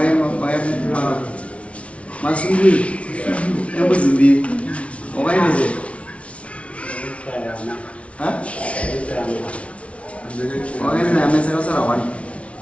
masungiri embudzi mbiri wakainezera wakainezera amese kasara 1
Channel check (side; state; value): right; late; 0.062 ms